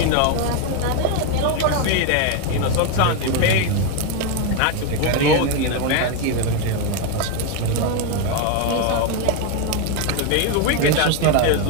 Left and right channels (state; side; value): different; both; correlation 0.01